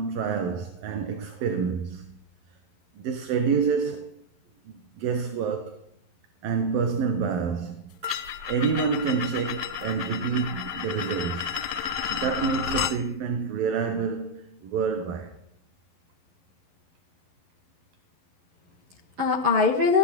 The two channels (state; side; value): late; left; 11 ms